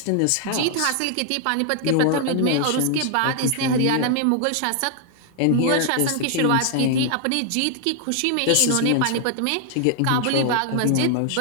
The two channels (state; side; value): different; both; correlation 0.00